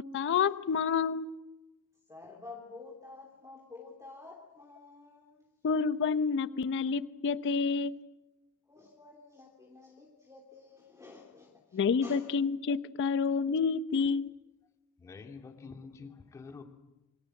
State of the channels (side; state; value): right; quieter; 5.3 dB